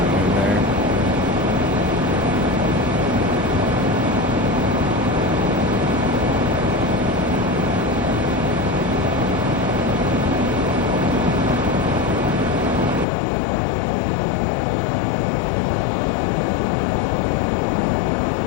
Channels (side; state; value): right; drops out; at 13.1 s